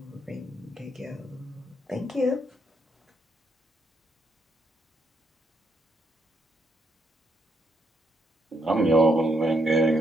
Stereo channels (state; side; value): normal; both; correlation 0.75